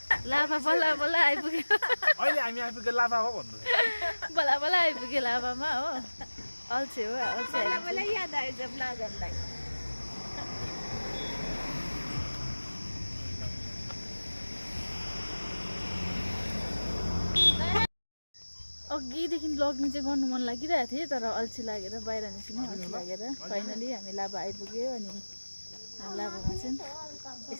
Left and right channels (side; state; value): both; inverted; correlation -1.00